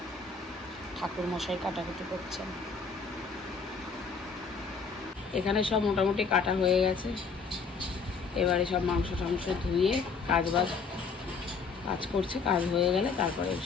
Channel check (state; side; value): quieter; right; 5.0 dB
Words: ঠাকুর মশাই কাটাকুটি করছেন। এখানে সব মোটামুটি কাটা হয়ে গেছে। এবারে সব মাংস টাংস ধুয়ে কাজ করছে, কাজ হয়ে গেলে তারপরে